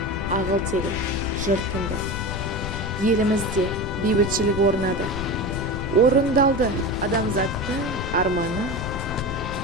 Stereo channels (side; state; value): left; noise; rumble, 6 dB below the sound